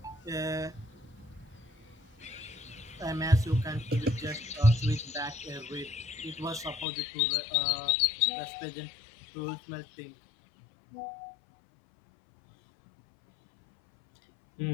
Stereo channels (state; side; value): drops out; right; at 6.9 s